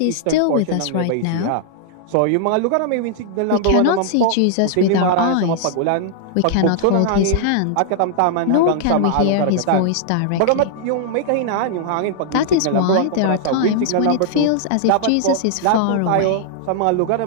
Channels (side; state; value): both; different; correlation -0.01